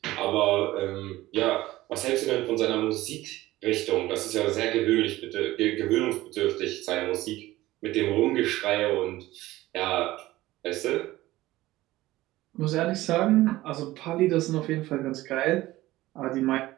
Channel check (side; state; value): left; quieter; 17.1 dB